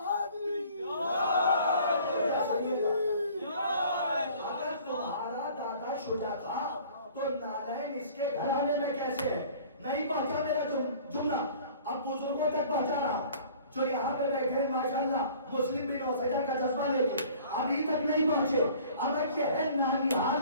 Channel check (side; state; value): both; inverted; correlation -0.50